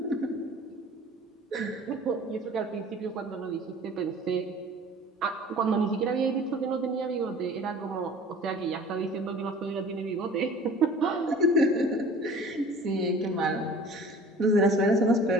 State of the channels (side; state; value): both; normal; correlation 0.45